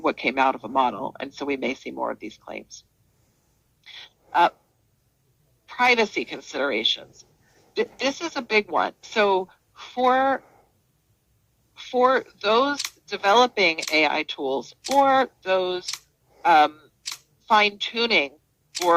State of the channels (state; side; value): identical; both; correlation 1.00